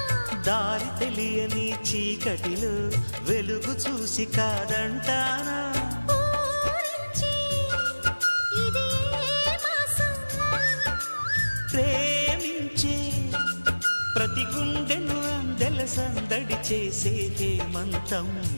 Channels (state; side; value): inverted; both; correlation -1.00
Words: దారి తెలియని చీకటిలో వెలుగు చూసి కాదంటానా ప్రేమించే ప్రతి గుండెను అందెల సందడి చేసే హేమంతం